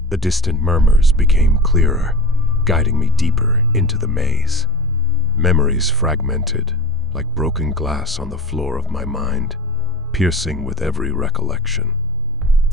the distant murmurs became clearer, guiding me deeper into the maze. Memories fragmented, like broken glass on the floor of my mind, piercing with every recollection.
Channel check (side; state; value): both; normal; correlation 0.75